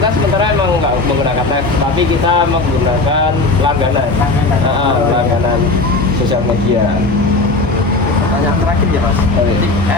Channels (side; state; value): right; quieter; 3.3 dB